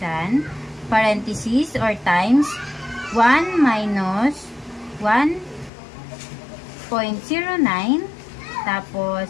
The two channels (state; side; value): drops out; right; at 5.7 s